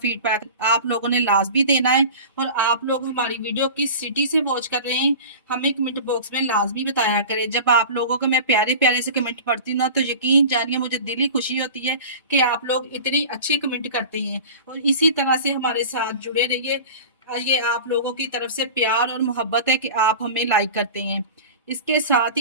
आप लोगों ने लाजमी देना है। और आप लोग हमारी वीडियो किस सिटी से वॉच कर रहे हैं हमें कमेंट बॉक्स में लाजमी बताया करें। जब आप लोगों को मैं प्यारे प्यारे से कमेंट पढ़ती हूँ ना तो यकीन जानिए मुझे दिली खुशी होती है कि आप लोग इतनी अच्छे कमेंट करते हैं। और इसी तरह से हमारे साथ जुड़े रहिए। ये आप लोगों की तरफ से प्यार और मोहब्बत है कि आप हमें लाइक करते हैं। इसके साथ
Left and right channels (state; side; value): inverted; both; correlation -0.36